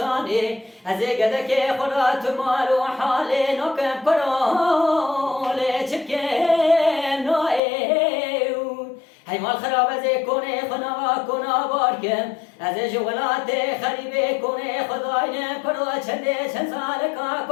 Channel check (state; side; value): drops out; right; at 7.6 s